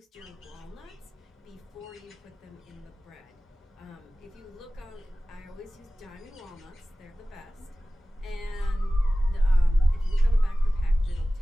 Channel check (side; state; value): both; normal; correlation 0.97